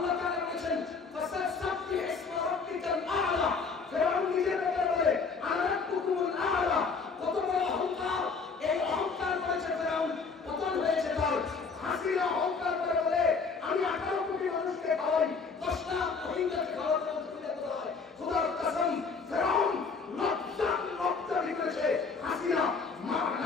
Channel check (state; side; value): quieter; right; 4.9 dB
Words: তাআলা বলেছেন ফাসাব্বিহ ইসমা রাব্বিকাল আ'লা। ফেরাউন নিজের ব্যাপারে বলে আনা রাব্বুকুমুল আ'লা। কত বড় অহংকার! এই অহংকার করেছে ফেরাউন, পতন হয়েছে তার। হাসিনা অহংকার করে বলে আমি 18 কোটি মানুষকে খাওয়াই, 10 লাখ রোহিঙ্গাকে খাওয়াতে কোথায়? খোদার কসম, ফেরাউন লজ্জা করেছে, হাসিনা